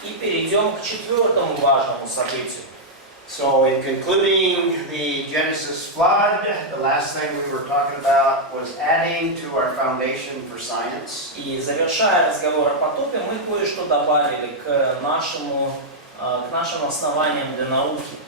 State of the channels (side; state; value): both; normal; correlation -0.04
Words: И перейдем к четвертому важному событию. So in concluding the Genesis flood, the last thing we were talking about was adding to our foundation for science. И завершая разговор о потопе, мы кое-что добавили к нашим основаниям для науки.